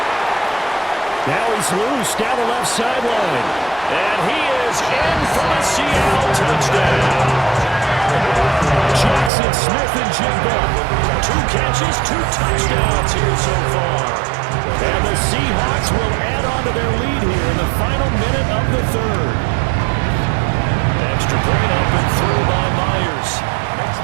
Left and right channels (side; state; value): left; drops out; at 9.3 s